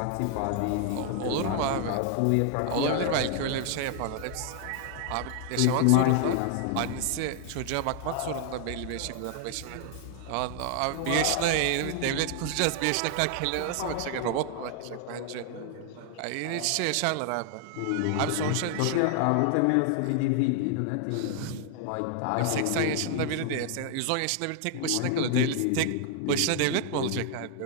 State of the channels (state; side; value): different; both; correlation 0.00